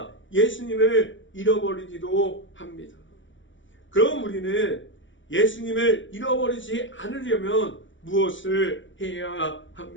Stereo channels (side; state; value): right; late; 0.55 ms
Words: 예수님을 잃어버리기도 합니다. 그럼 우리는 예수님을 잃어버리지 않으려면 무엇을 해야